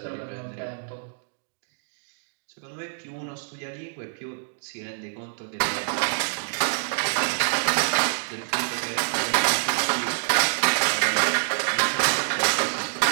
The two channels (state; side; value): silent; left; digital silence